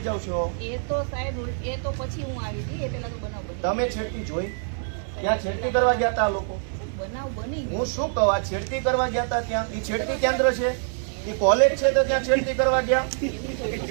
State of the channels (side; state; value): left; silent; digital silence